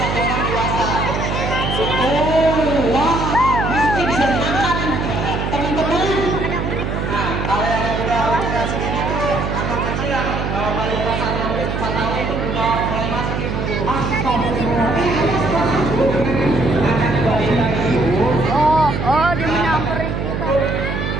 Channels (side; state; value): right; noise; hum, 2 dB below the sound